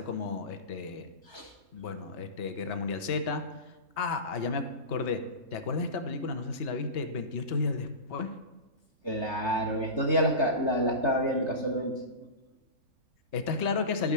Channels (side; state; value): left; late; 3.2 ms